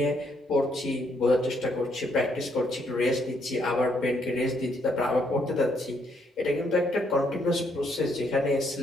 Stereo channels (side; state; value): both; normal; correlation 0.72